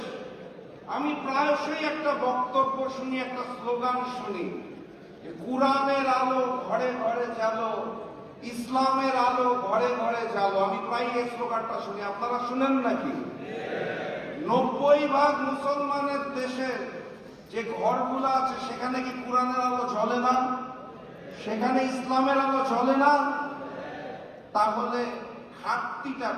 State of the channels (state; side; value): identical; both; correlation 1.00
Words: আমি প্রায়শই একটা বক্তব্য শুনি, একটা স্লোগান শুনি, কোরআনের আলো ঘরে ঘরে জ্বালো, ইসলামের আলো ঘরে ঘরে জ্বালো। আমি প্রায় এই স্লোগানটা শুনি, আপনারা শুনেন নাকি? 90% মুসলমানের দেশে যে ঘরগুলো আছে সেখানে কি কোরআনের আলো জ্বলে না? সেখানে ইসলামের আলো জ্বলে না? তাহলে ঘাটতিটা